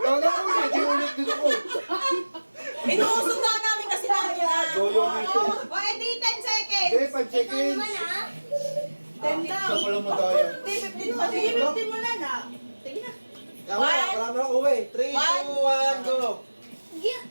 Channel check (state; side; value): inverted; both; correlation -1.00